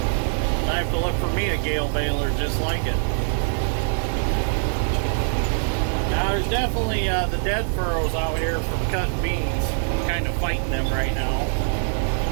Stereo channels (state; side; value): silent; left; 63 dB below the other